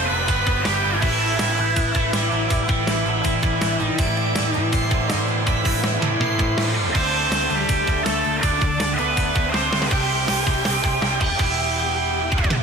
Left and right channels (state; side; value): normal; both; correlation 0.57